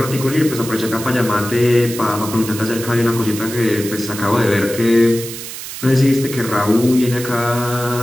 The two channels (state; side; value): noise; right; hiss, 10 dB below the sound